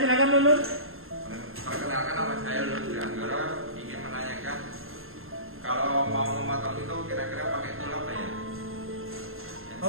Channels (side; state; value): left; late; 0.61 ms